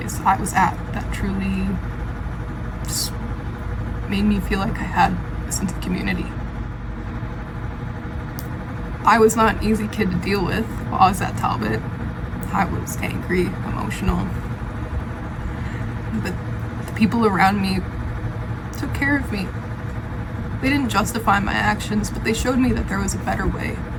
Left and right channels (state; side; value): identical; both; correlation 1.00